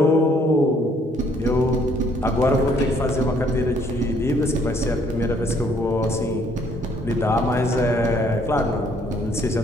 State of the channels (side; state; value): both; normal; correlation 0.64